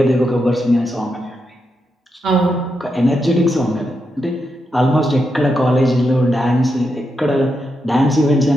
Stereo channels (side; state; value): both; normal; correlation 0.84